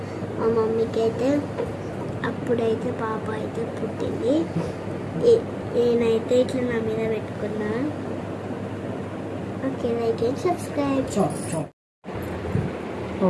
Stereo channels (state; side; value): identical; both; correlation 1.00